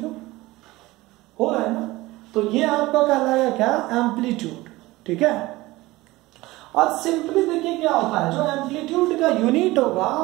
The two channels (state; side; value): quieter; left; 19.5 dB